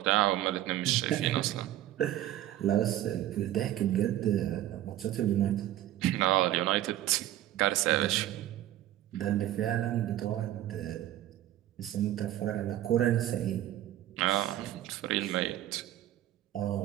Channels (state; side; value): quieter; left; 13.3 dB